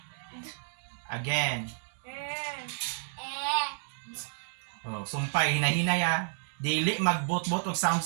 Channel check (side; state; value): left; silent; digital silence